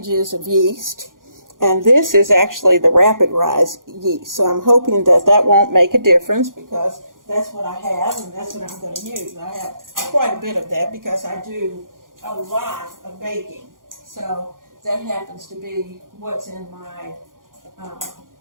of yeast, and this is actually the rapid rise yeast, so I'm hoping that won't make a difference, because that's what I have and that's what I'm going to use. I have quite a bit of that because I do a lot of baking, so that happens to be what's in my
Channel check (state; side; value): late; left; 0.90 ms